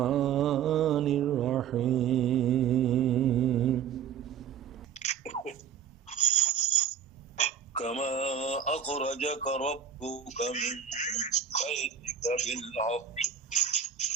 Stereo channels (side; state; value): left; quieter; 8.2 dB